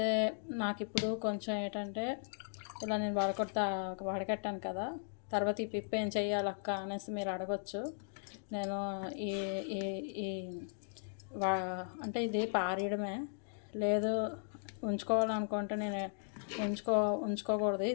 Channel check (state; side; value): silent; right; digital silence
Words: నాకు ఇప్పుడు కొంచెం ఏంటంటే ఇలా నేను వడకట్టాను కదా, తర్వాత ఈ పిప్పు ఏం చెయ్యాలక్క అనేసి మీరు అడగచ్చు. నేను ఈ ఈ అంటే ఇది పారేయడమే, లేదు ఉంచుకోవాలనుకుంటే నేను ఉంచుకోకూడదు,